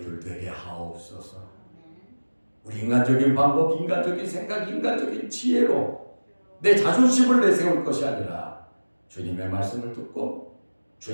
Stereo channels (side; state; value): both; inverted; correlation -1.00